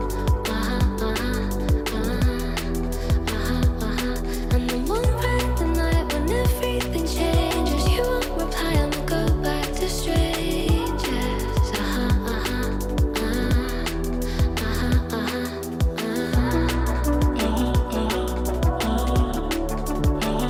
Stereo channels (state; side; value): identical; both; correlation 1.00